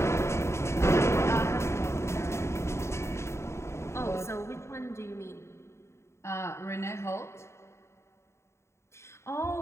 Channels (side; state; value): right; late; 0.13 ms